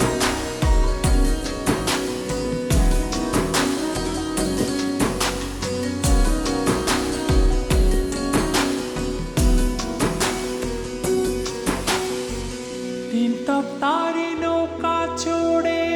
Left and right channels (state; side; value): identical; both; correlation 1.00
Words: তিনতপ তারি নৌকা চড়ে